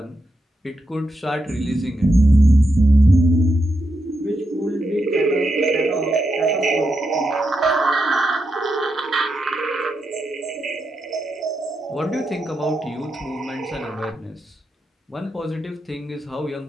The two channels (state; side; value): normal; both; correlation 0.85